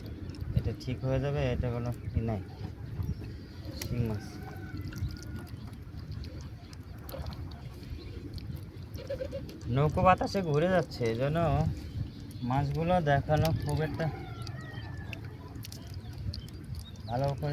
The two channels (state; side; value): identical; both; correlation 1.00